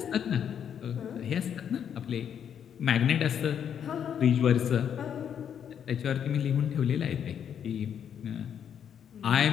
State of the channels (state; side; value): quieter; right; 8.5 dB